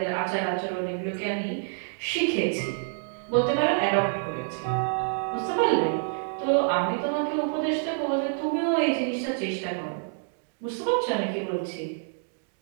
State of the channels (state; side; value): silent; left; digital silence